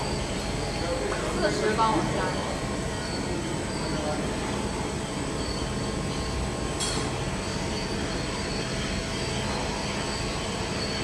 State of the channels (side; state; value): both; identical; correlation 1.00